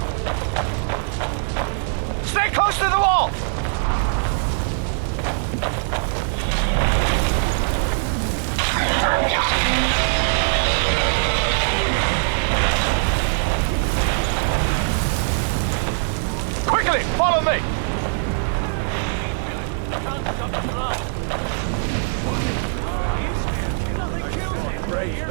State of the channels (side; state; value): left; silent; digital silence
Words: Stay close to the wall! Quickly, follow me!